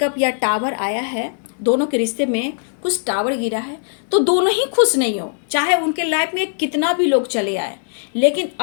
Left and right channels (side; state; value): right; silent; digital silence